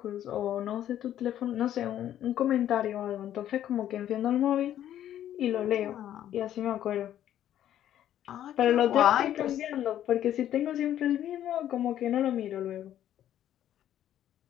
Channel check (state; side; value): quieter; right; 11.4 dB